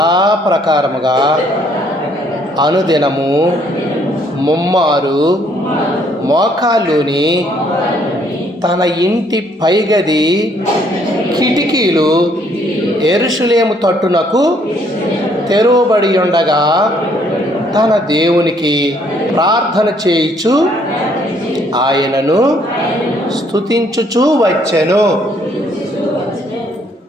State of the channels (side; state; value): both; normal; correlation 0.66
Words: అనుదినము ముమ్మారు మోకాళ్ళుని తన ఇంటి పైగది కిటికీలు యెరూషలేము తట్టునకు తెరువబడి ఉండగా తన దేవునికి ప్రార్థన చేయుచు ఆయనను స్తుతించుచూ వచ్చెను.